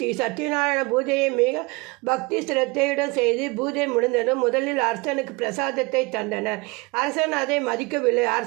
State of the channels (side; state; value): left; quieter; 26.0 dB